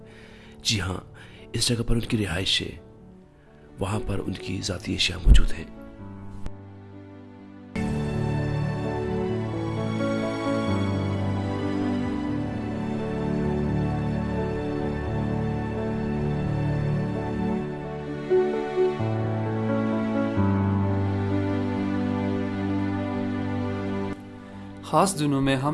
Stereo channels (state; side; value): identical; both; correlation 1.00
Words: جی ہاں، اس جگہ پر ان کی رہائش ہے، وہاں پر ان کی ذاتی اشیاء موجود ہیں۔ خاص دنوں میں